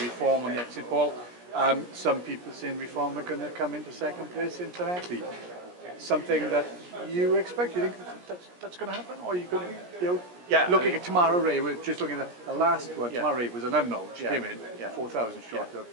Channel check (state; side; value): late; left; 17 ms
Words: on the exit poll. Some people saying Reform are going to come into second place in Llanelli. Something that you expect? You think that's going to happen? Or you could, looking at Tamara Ray, we're just looking at the last one. Tamara Ray was an unknown. She came in 4,000 short of